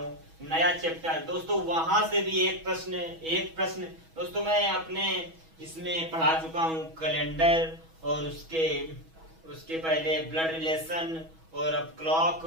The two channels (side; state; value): left; late; 6.2 ms